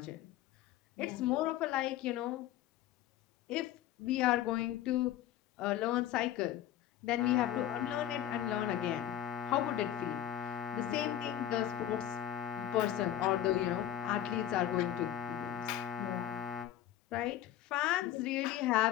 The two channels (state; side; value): quieter; right; 11.9 dB